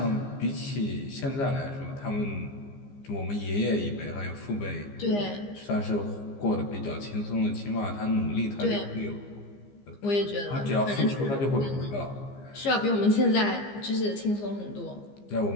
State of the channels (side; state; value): right; late; 15 ms